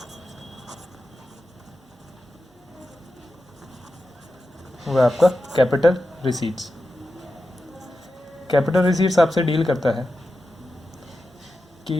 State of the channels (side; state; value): both; normal; correlation 0.91